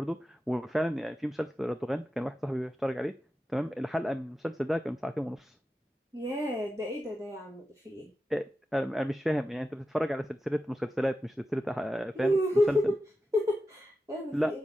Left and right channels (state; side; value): normal; both; correlation 0.91